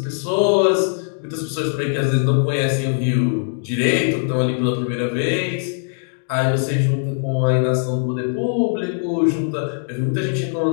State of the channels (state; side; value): silent; right; digital silence